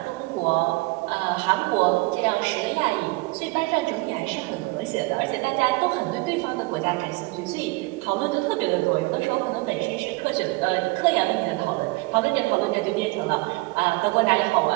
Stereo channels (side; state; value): left; quieter; 23.9 dB